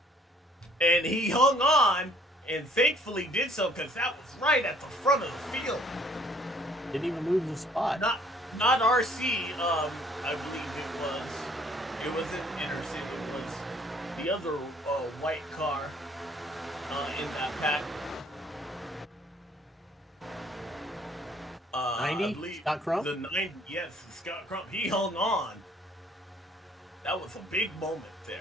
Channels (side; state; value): both; normal; correlation 0.59